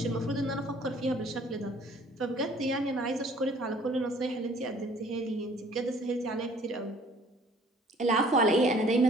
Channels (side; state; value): both; normal; correlation 0.56